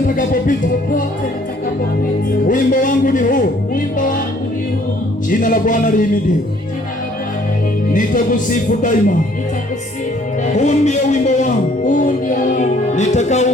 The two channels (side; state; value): both; normal; correlation 0.60